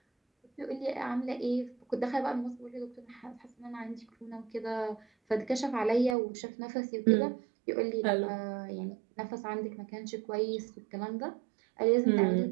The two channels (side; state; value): left; drops out; at 6.2 s